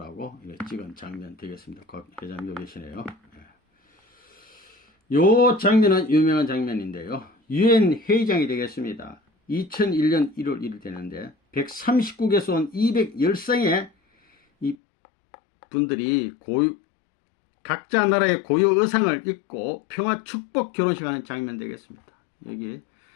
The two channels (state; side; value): drops out; right; at 14.8 s